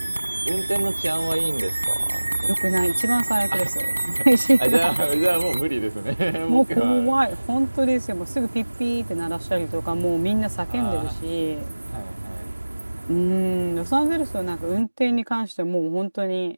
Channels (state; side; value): inverted; both; correlation -1.00